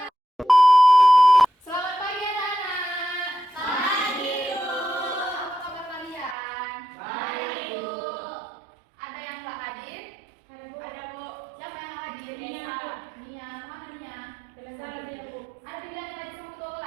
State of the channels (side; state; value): left; drops out; at 6.4 s